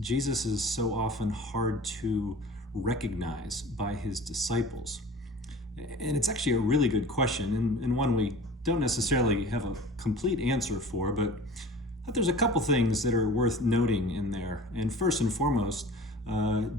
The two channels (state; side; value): normal; both; correlation 0.41